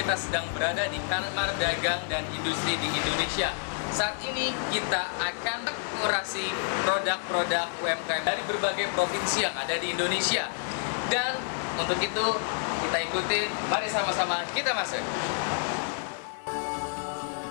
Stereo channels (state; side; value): silent; right; 59 dB below the other